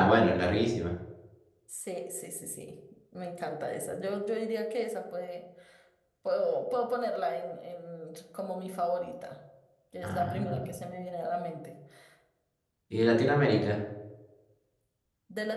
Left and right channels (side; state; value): both; identical; correlation 1.00